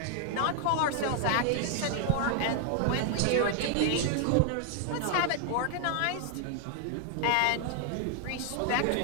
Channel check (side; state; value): both; different; correlation 0.00